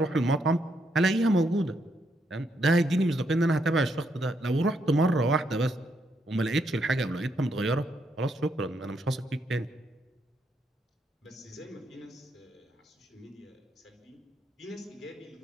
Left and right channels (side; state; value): both; normal; correlation 0.77